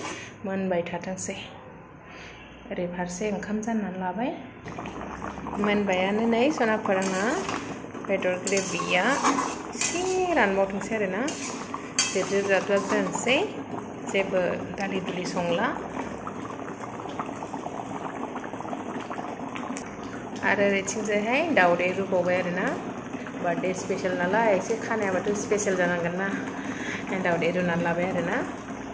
मोनबाय थाथोंसै ओरै फारसे ओंखाम जाननानै लाबाय मोनबायानो नै सनाफोर आंना बेदर ग्रेभिया एसे रानबावथोंसै आरोना जेब दोनसै जेबो दालि दुलि संला आरो ओरैथिंजायहाय दाउदै रुबावबाय आरोना बार्थडे स्पेशल नालाय एसे खानायाबाथ' स्पेशल जानांगोन ना दाउदै रुनानै लाबाय आरोना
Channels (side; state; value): both; identical; correlation 1.00